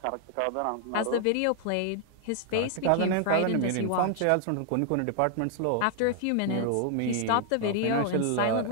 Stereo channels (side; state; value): both; different; correlation 0.00